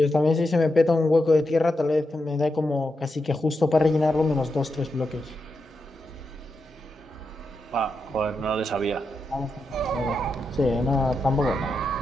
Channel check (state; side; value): normal; both; correlation 0.86